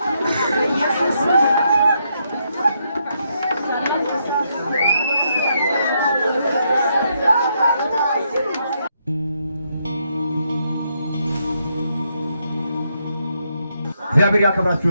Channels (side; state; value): both; inverted; correlation -0.77